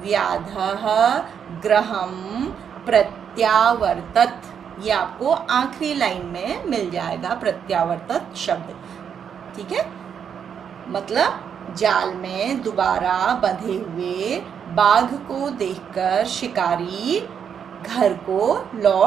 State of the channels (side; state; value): left; quieter; 7.7 dB